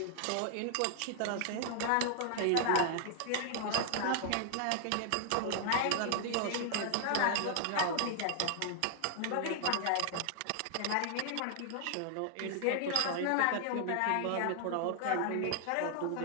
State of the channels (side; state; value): both; different; correlation -0.01